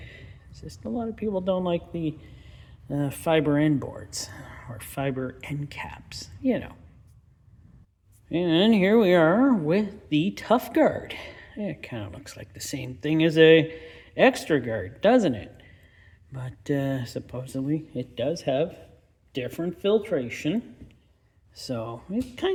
It's just a lot of people don't like the fiber end boards or fiber end caps, you know. And here we are with the Tough Guard. It kind of looks like the same thing as a Extra Guard, doesn't it? But supposedly it does have different filtration. So it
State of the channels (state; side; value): identical; both; correlation 1.00